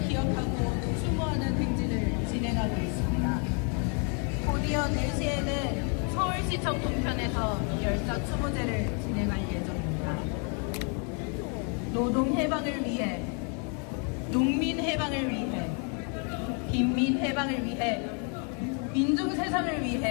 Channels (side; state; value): right; quieter; 38.8 dB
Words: 기억하고 추모하는 행진을 진행하고 있습니다. 곧이어 4시에는 서울시청 동편에서 열사 추모제를 진행할 예정입니다. 노동 해방을 위해, 농민 해방을 위해, 빈민 해방을 위해, 민중 세상을